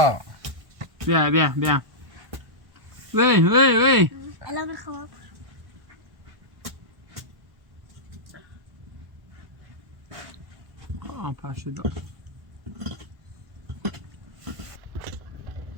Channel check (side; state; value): left; late; 1.1 ms